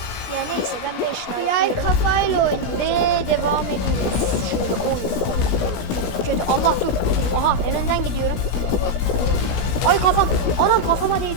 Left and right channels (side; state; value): right; late; 16 ms